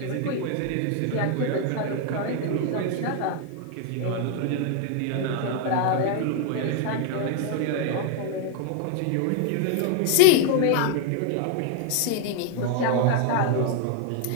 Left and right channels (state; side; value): different; both; correlation 0.00